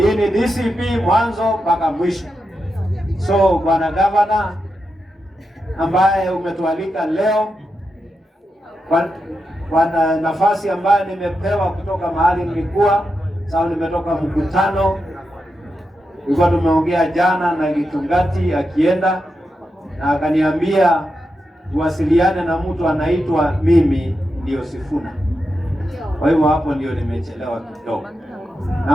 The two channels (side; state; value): both; normal; correlation 0.87